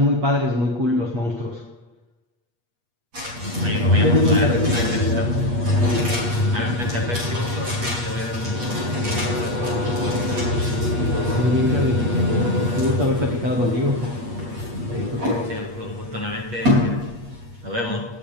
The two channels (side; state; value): left; late; 8.4 ms